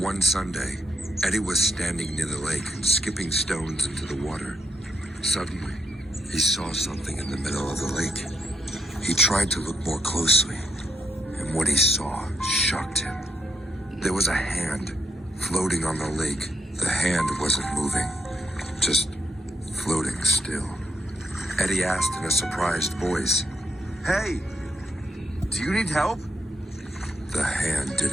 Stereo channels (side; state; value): both; normal; correlation 0.80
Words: Sunday, Eddie was standing near the lake and skipping stones into the water. Suddenly, he saw something in the middle of the lake. He tried to look more closely, and what he saw shocked him. There was a hand floating on the lake. The hand wasn't moving, just floating still. Eddie asked in a surprised voice, "Hey, do you need help?" The hand